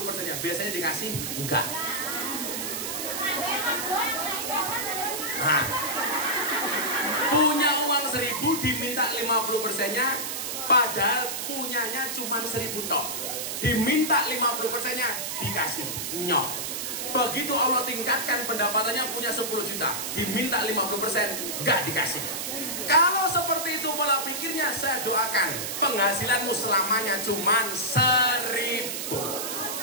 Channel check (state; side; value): noise; right; hiss, 3 dB below the sound